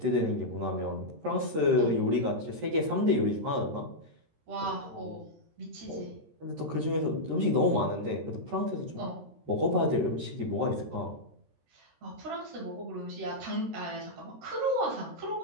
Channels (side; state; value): left; late; 13 ms